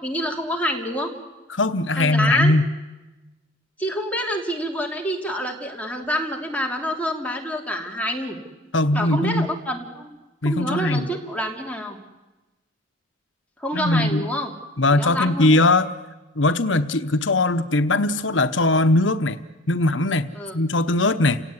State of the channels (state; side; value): normal; both; correlation 0.43